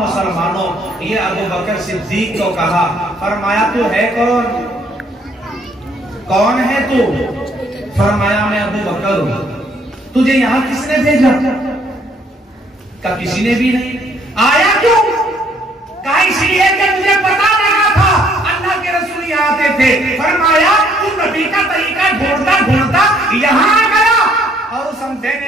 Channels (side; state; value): both; normal; correlation 0.65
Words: ये अबू बकर सिद्दीक को कहा, फरमाया तू है कौन, कौन है तू? फरमाया मैं अबू बकर हूं। तुझे यहां किसने भेजा? का किसी ने भी नहीं। आया क्यों? कहा इसलिए कि मुझे पता लगा था अल्लाह के रसूल यहाँ आते थे। फरमाया तू नबी का तरीका ढूंढता ढूंढता यहाँ आ गया, और उस